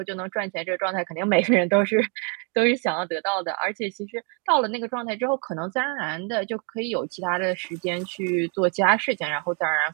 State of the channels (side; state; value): left; quieter; 36.8 dB